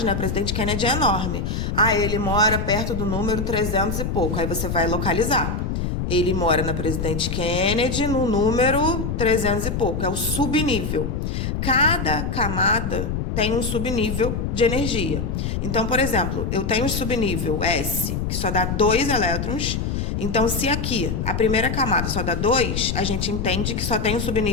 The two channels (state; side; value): noise; left; rumble, 2 dB below the sound